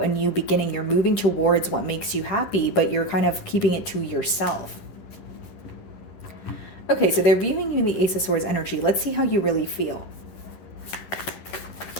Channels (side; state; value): right; late; 10 ms